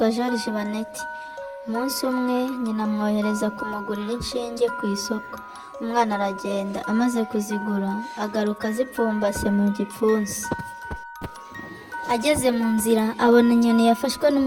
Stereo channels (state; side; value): identical; both; correlation 1.00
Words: George Baneti. Umunsi umwe nyina amwohereza kumugurira inshinge ku isoko. Umwana aragenda, amaze kuzigura agaruka azipfumbase mu gipfunsi. Ageze mu nzira abona inyoni yafashwe